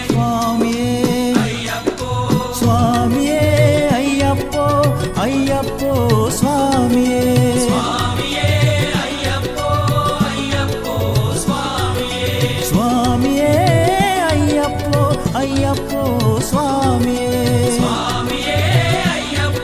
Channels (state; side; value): identical; both; correlation 1.00